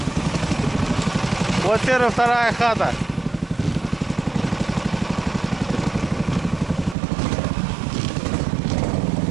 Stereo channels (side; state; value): left; drops out; at 7.0 s